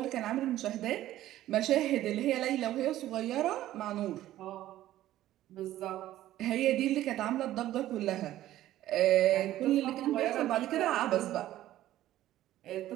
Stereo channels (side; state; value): left; quieter; 14.0 dB